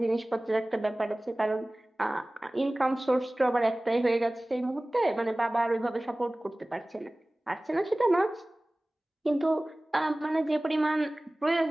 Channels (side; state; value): both; normal; correlation 0.98